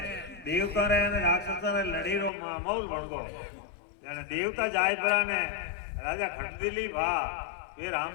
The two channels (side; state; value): right; drops out; at 2.3 s